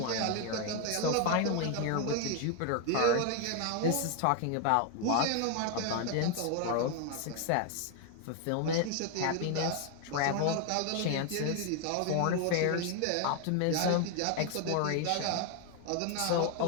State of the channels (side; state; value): both; different; correlation 0.01